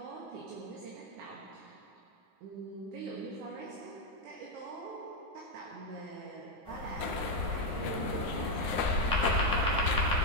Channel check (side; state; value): left; late; 9.7 ms